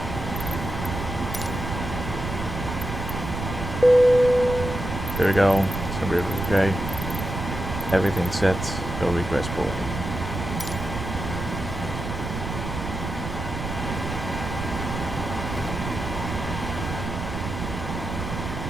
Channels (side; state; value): right; noise; rumble, 5 dB below the sound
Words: There we go. So we're okay. Everything's set. Go request boarding.